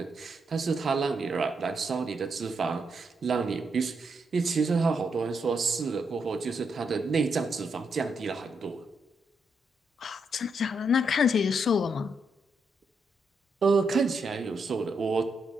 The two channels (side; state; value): both; normal; correlation 0.80